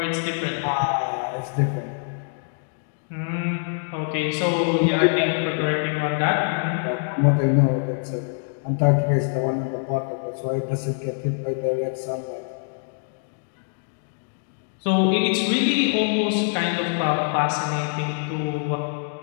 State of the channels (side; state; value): right; silent; 62 dB below the other